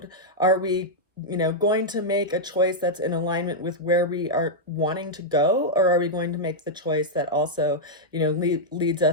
Are we, you know, going to make a choice that's in alignment with where we are wanting to go, or are we going to make the choice that also, you know, leads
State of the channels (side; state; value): both; normal; correlation -0.05